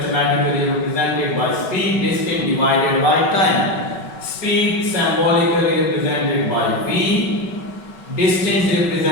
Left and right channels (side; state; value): right; late; 5.4 ms